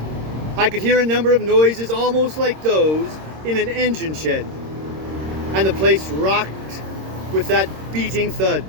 I could hear a number of noises almost like those in an engine shed, and the place rocked with that beating thud.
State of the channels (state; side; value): late; left; 26 ms